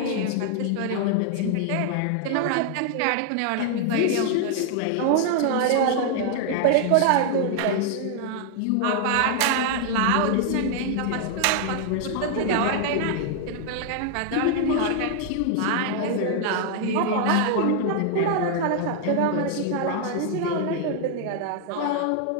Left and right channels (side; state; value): both; different; correlation 0.00